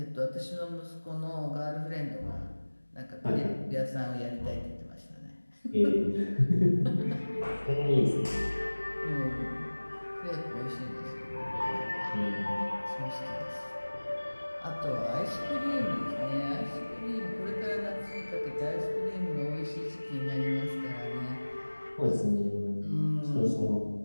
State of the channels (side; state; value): both; inverted; correlation -1.00